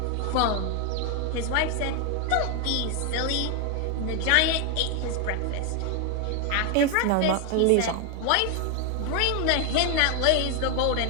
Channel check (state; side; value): different; both; correlation 0.01